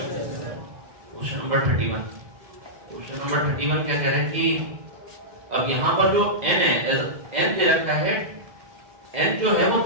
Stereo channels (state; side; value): late; left; 2.0 ms